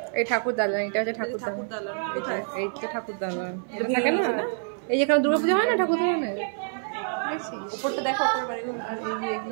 এই ঠাকুর দালান, এটা হচ্ছে ঠাকুর দালান, এইটা ঠাকুর দালান, এটা থাকে না এই যেখানে দুর্গাপূজা হয় না ঠাকুর দালানের, উপরটা দেখো, উপরের বাড়িগুলো। আর এই যে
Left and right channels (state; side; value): silent; left; 55 dB below the other